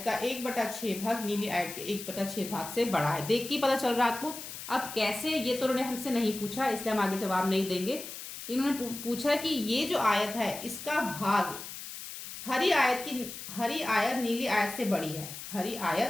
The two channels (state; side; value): noise; left; hiss, 10 dB below the sound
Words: का 1/6 भाग नीली आयत के 1/6 भाग से बड़ा है। देख के पता चल रहा है आपको। अब कैसे, ये तो उन्होंने हमसे नहीं पूछा इसलिए हम आगे जवाब नहीं देंगे। इन्होंने पूछा कि ये जो आयत है इसका भाग हरी आयत नीली आयत से बड़ी है। हरी